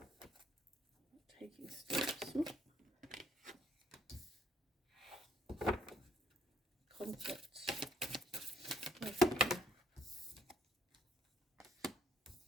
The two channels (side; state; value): both; normal; correlation 0.68